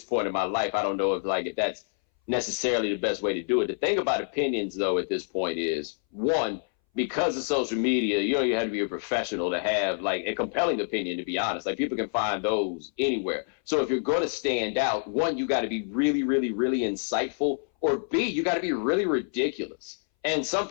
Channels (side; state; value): right; silent; 60 dB below the other